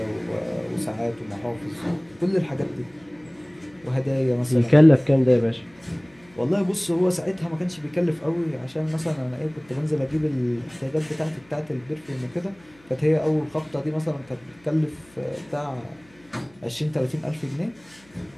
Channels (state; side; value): noise; left; hum, 29 dB below the sound